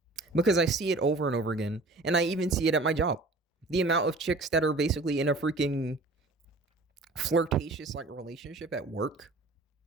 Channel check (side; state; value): left; quieter; 3.2 dB